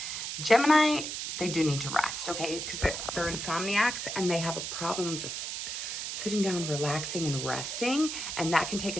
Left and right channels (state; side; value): noise; right; hiss, 5 dB below the sound